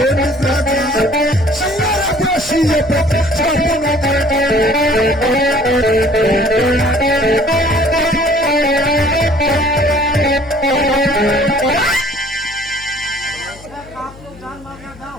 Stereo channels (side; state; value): left; noise; hum, 21 dB below the sound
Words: নিদ্রাতে শিয়ারা বসিয়ে পথে